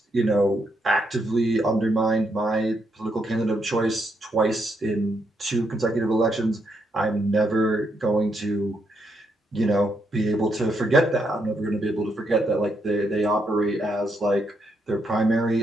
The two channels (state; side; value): normal; both; correlation 0.78